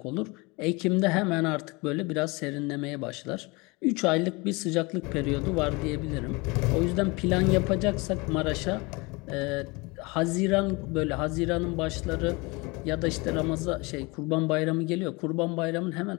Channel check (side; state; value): right; quieter; 26.1 dB